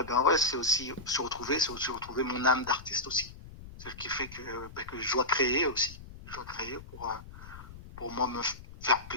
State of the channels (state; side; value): noise; left; rumble, 16 dB below the sound